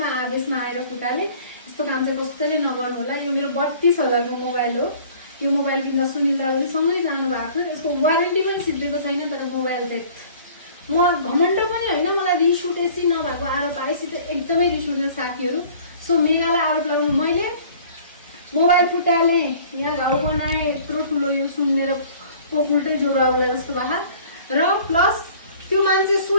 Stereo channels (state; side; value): inverted; both; correlation -0.50